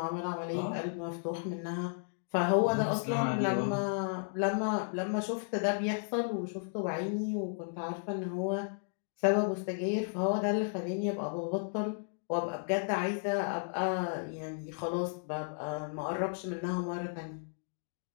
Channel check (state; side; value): silent; right; digital silence